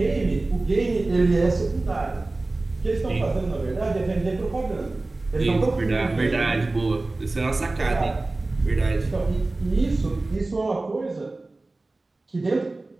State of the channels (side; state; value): left; quieter; 3.1 dB